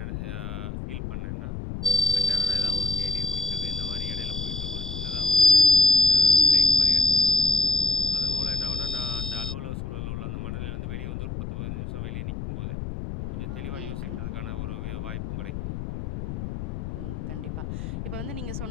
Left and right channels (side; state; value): left; noise; rumble, 6 dB below the sound